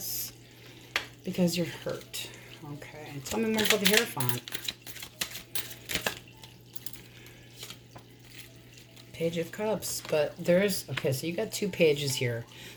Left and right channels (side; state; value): both; identical; correlation 1.00